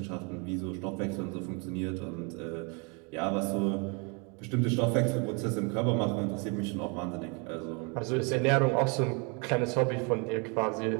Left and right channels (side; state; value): left; quieter; 33.3 dB